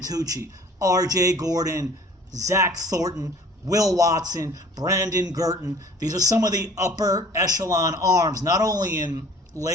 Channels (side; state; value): both; normal; correlation 0.50